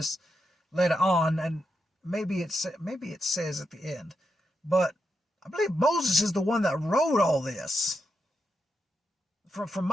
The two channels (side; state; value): both; normal; correlation 0.84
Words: later on, and maybe it says at the end, but I believe Moses is the one that wrote all this. From